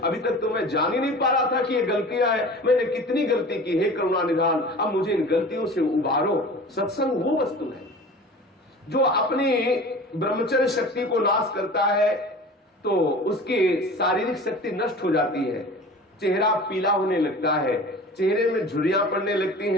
तक तो मैं जान ही नहीं पा रहा था कि ये गलतियां हैं, मैंने कितनी गलती की, हे करुणा निधान, अब मुझे इन गलतियों से उबारो। सत्संग वो वस्तु है जो अपनी ब्रह्मचर्य शक्ति को नाश करता है, तो उसकी शारीरिक शक्ति नष्ट हो जाती है, चेहरा पीला होने लगता है, चेहरे में झुर्रियां पड़ने लगती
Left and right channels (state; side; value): normal; both; correlation 0.39